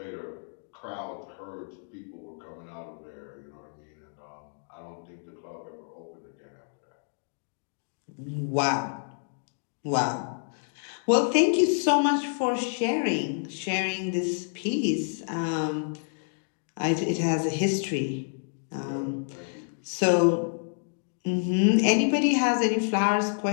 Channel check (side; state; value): right; silent; digital silence